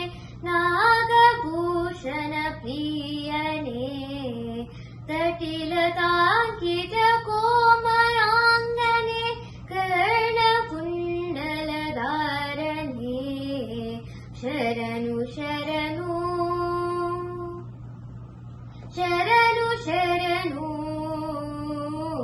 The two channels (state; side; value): identical; both; correlation 1.00